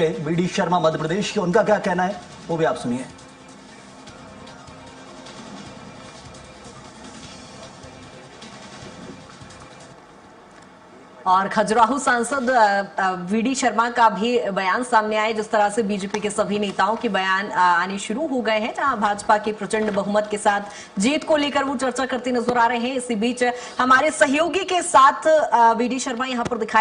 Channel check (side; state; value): both; identical; correlation 1.00